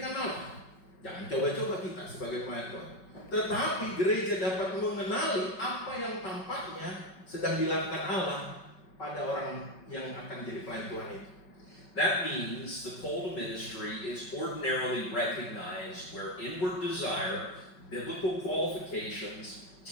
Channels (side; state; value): right; late; 5.3 ms